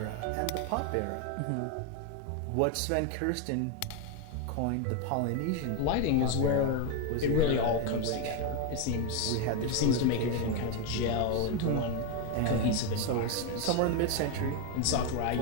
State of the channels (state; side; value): different; both; correlation 0.01